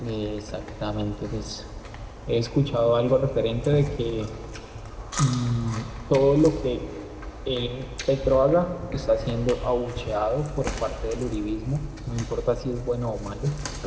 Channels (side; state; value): both; identical; correlation 1.00